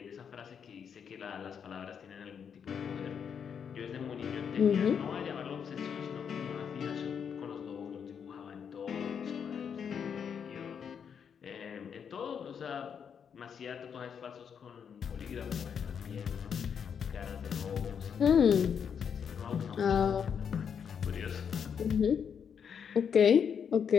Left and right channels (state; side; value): quieter; right; 7.3 dB